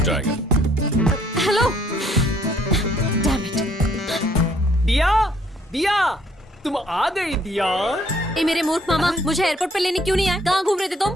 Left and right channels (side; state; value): both; normal; correlation 0.65